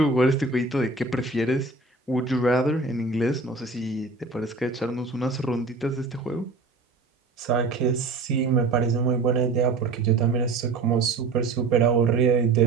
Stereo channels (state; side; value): quieter; left; 3.8 dB